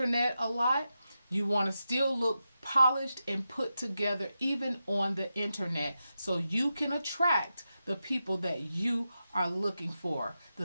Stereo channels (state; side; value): inverted; both; correlation -0.90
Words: a lot, you want to still look polished and put together even on the internet, so you can attract the people that you are looking for,